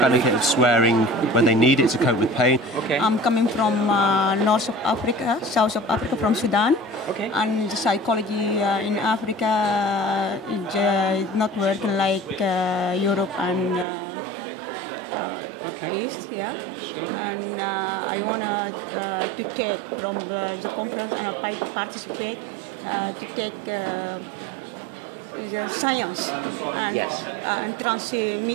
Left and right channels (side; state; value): left; drops out; at 13.9 s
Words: of swearing when they need it to cope with pain. Okay. I'm coming from north of Africa, south of Africa, from Sudan. Okay. And the psychology in Africa is not working like Europe and East, and I want to take from the conference and I participate to take the science and